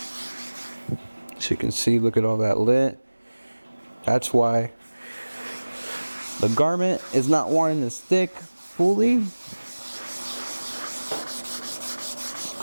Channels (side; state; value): both; inverted; correlation -1.00